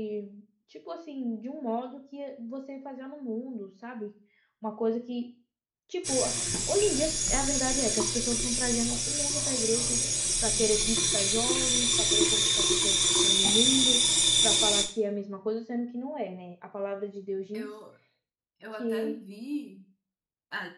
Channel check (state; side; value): identical; both; correlation 1.00